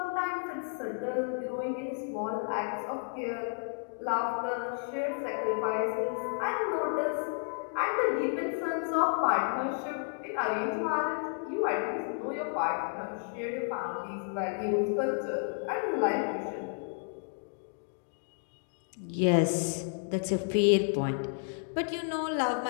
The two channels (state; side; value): silent; right; 57 dB below the other